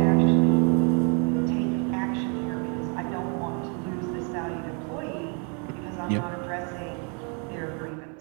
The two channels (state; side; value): quieter; left; 37.2 dB